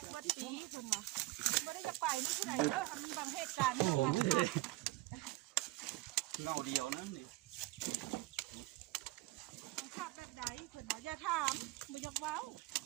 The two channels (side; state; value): left; quieter; 19.6 dB